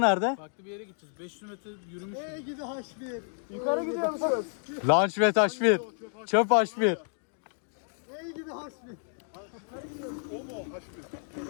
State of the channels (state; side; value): silent; right; 57 dB below the other